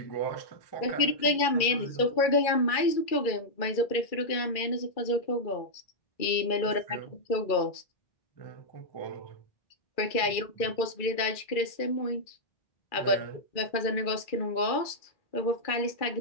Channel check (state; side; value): late; right; 2.3 ms